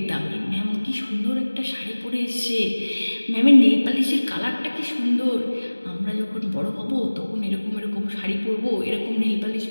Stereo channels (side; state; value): both; inverted; correlation -1.00